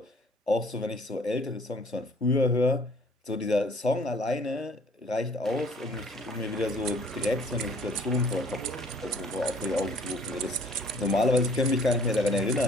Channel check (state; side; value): normal; both; correlation 0.56